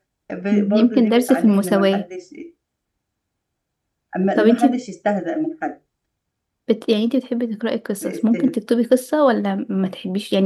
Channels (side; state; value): both; identical; correlation 1.00